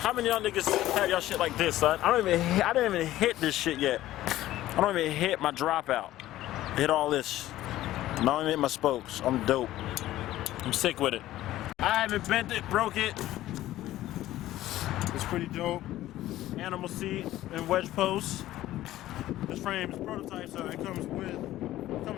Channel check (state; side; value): quieter; right; 14.8 dB